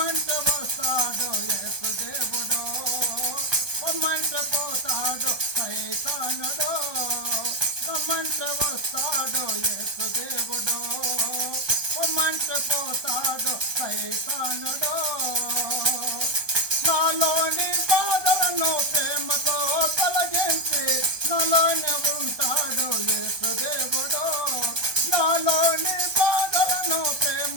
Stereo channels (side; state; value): left; late; 1.2 ms